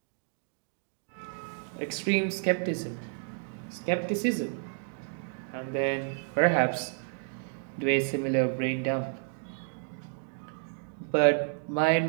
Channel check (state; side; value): silent; left; 57 dB below the other